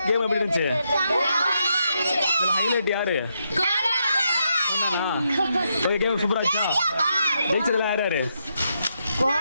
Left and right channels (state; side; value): inverted; both; correlation -0.81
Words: கேம் எப்படி இருந்துச்சு? ஹைலைட் யாரு? ஓகே, கேம் சூப்பரா இருந்துச்சா? ஜெயிச்சதுல யார் யாரு